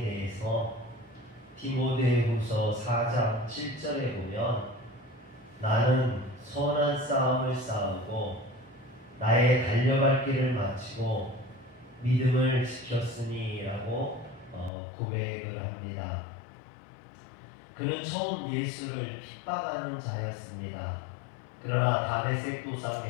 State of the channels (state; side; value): drops out; right; at 14.7 s